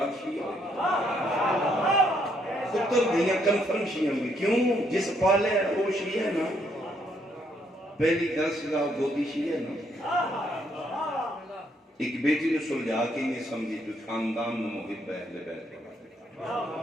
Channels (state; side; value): normal; both; correlation 0.72